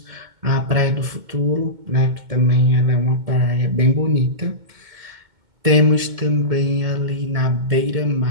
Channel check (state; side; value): late; left; 2.2 ms